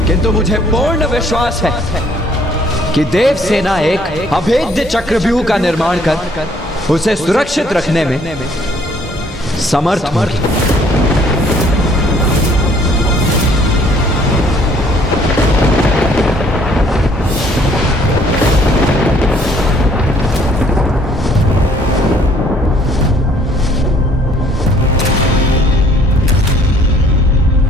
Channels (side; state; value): both; normal; correlation 0.61